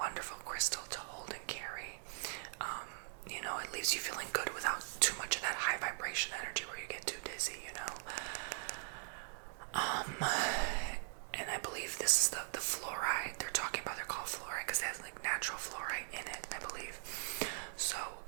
crystal to hold and carry. It leaves you feeling good without too much of that high vibration energy where you get too dizzy, And I believe this is the fluoride they're talking about. They're called fluoride because they have like natural fluoride in it, I believe. So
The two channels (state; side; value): silent; left; digital silence